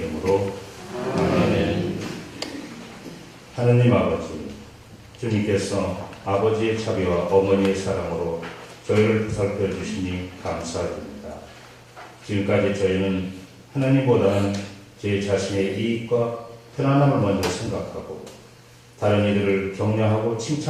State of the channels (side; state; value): both; identical; correlation 1.00